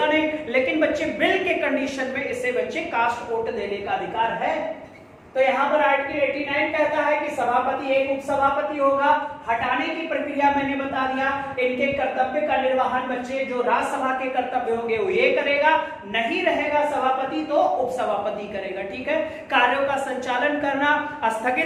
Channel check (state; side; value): identical; both; correlation 1.00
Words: नहीं, लेकिन बच्चे बिल के कंडीशन में इसे बच्चे कास्ट वोट देने का अधिकार है। तो यहां पर आर्टिकल 89 कहता है कि सभापति एक उपसभापति होगा। हटाने की प्रक्रिया मैंने बता दिया। इनके कर्तव्य का निर्वहन बच्चे जो राज्यसभा के कर्तव्य होंगे वो ये करेगा, नहीं रहेगा सभापति तो उपसभापति करेगा, ठीक है? कार्यों का संचालन करना,